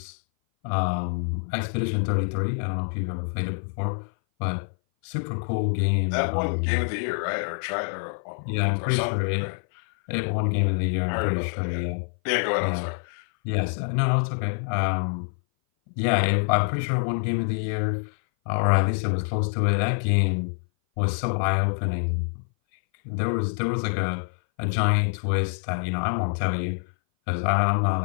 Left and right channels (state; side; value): silent; right; 58 dB below the other